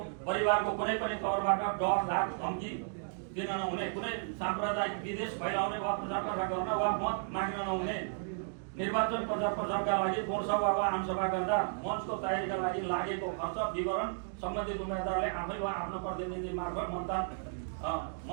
परिवारको कुनै पनि तौरबाट डर, धाक, धम्की दिन नहुने। कुनै साम्प्रदायिक विदेश फैलाउने वा प्रचार प्रसार गर्न वा मत माग्न नहुने। निर्वाचन प्रचार प्रसारका लागि कोणसभा वा आमसभा गर्दा मञ्चको तयारीका लागि लागेको खर्च विवरण सम्बन्धित उम्मेदवारले आफै वा आफ्नो प्रतिनिधि मार्फत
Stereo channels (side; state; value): left; silent; digital silence